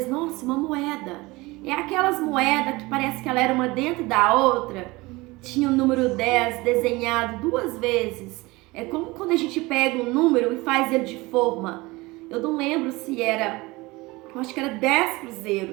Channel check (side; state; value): left; quieter; 22.2 dB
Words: nossa, uma moeda. É aquelas moedas que parece que ela era uma dentro da outra. Tinha o número 10 desenhado 2 vezes. É como quando a gente pega um número e faz ele de forma. Eu não lembro se era, eu acho que era 10